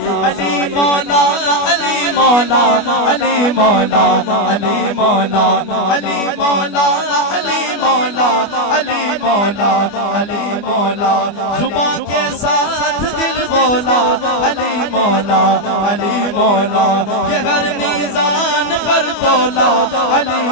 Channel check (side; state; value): right; late; 25 ms